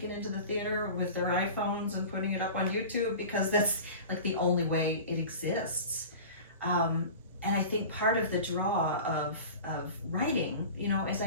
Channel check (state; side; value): inverted; both; correlation -0.36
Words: into the theater with their iPhones and putting it up on YouTube, because that's like the only way it exists. And I think part of the draw of writing, is